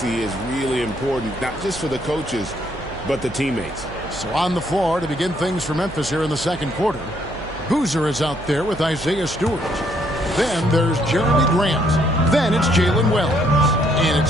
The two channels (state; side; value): noise; right; hum, 15 dB below the sound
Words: is really important, not just for the coaches, but the teammates. So on the floor to begin things for Memphis here in the second quarter, Boozer is out there with Isaiah Stewart. Then there's Jeremy Grant. Then it's Jalen Wells. And